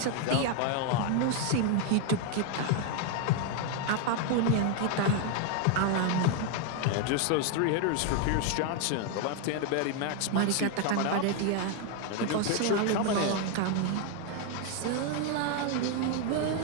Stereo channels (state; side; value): different; both; correlation 0.01